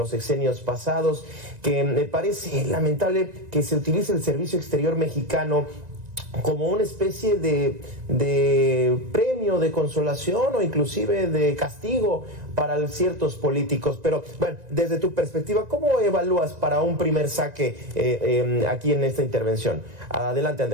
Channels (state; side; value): late; left; 1.9 ms